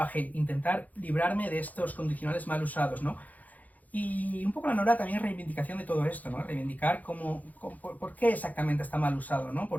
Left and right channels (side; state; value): right; late; 0.079 ms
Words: intentar librarme de estos condicionales mal usados, ¿no? Y un poco la Nora también es reivindicación de todo esto, ¿no? Reivindicar por qué exactamente está mal usado, ¿no?